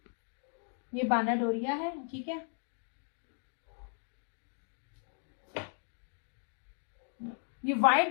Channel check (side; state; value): right; silent; 53 dB below the other